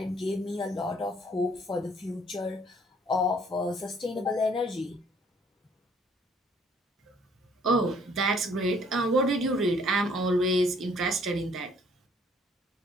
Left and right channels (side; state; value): both; normal; correlation 0.61